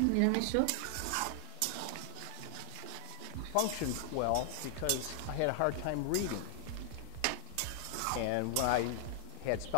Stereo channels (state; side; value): different; both; correlation 0.00